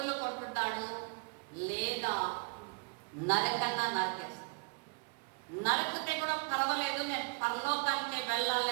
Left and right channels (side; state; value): left; quieter; 33.7 dB